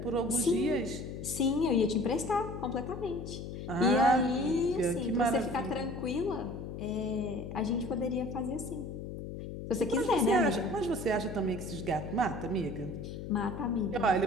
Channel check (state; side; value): noise; left; hum, 8 dB below the sound